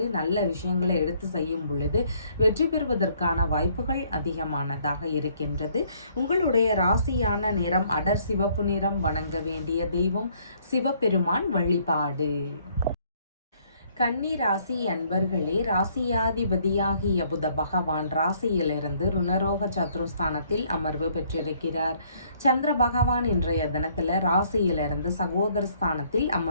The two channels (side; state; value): both; inverted; correlation -0.64